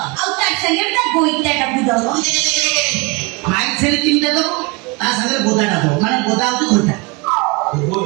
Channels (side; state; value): left; quieter; 28.2 dB